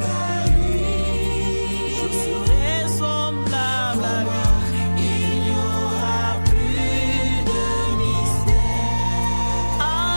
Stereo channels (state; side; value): inverted; both; correlation -1.00